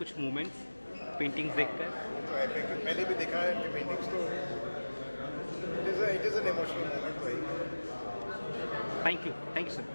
कुछ मोमेंट्स पेंटिंग्स देखकर? तो पहले भी देखा है कि पेंटिंग्स तो it is an emotional moment भाई। Thank you sir,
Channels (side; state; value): both; inverted; correlation -1.00